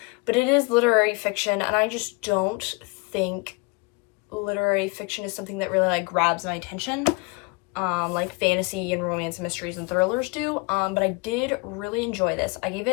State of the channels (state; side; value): quieter; right; 27.8 dB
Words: but it is literary fiction, and I just don't think literary fiction is something that really, like, grabs my attention, like fantasy and romance and mysteries and thrillers do, but I did really enjoy this. I gave